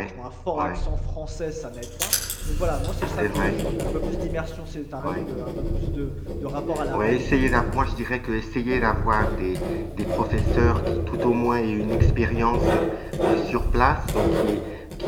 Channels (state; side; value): identical; both; correlation 1.00